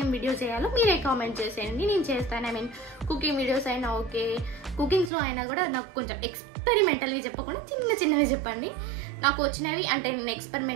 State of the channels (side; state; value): left; drops out; at 5.1 s